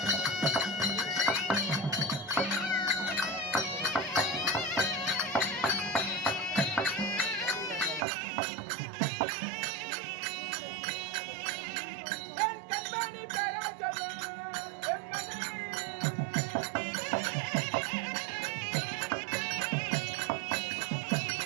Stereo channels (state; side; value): drops out; left; at 8.1 s